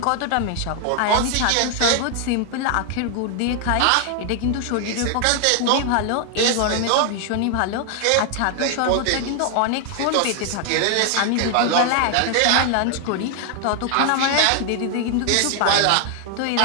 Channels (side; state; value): both; different; correlation 0.00